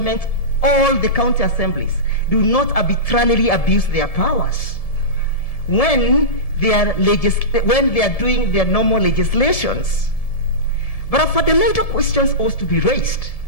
or the county assemblies do not arbitrarily abuse their powers when they are doing their normal legislations. But a fundamental question ought to be raised,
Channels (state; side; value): late; right; 1.7 ms